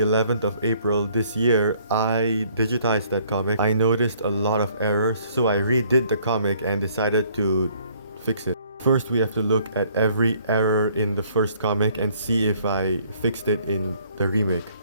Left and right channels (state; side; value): inverted; both; correlation -0.62